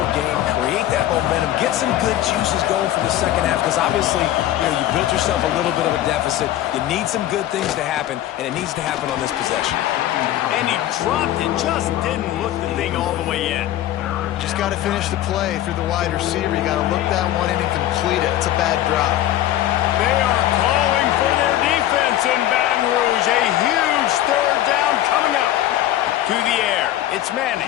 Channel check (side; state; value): right; quieter; 13.3 dB